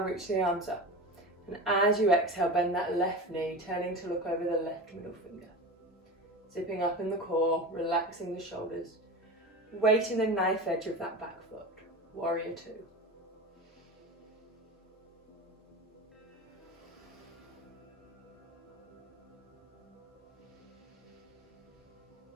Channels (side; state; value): both; normal; correlation 0.29